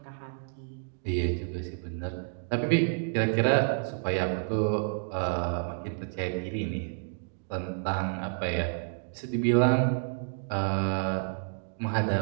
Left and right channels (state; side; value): silent; left; digital silence